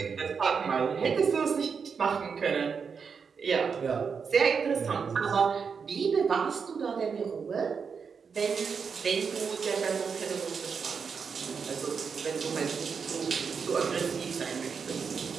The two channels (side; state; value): left; quieter; 6.0 dB